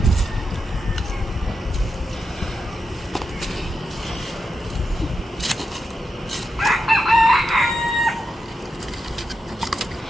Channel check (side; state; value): both; normal; correlation 0.86